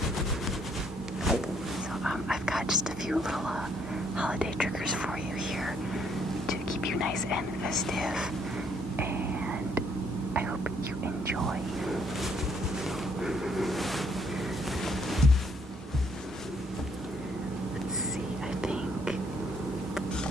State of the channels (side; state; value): both; normal; correlation 0.68